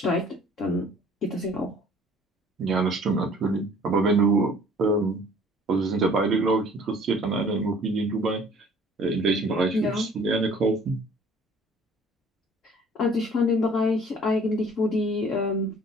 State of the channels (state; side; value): normal; both; correlation 0.53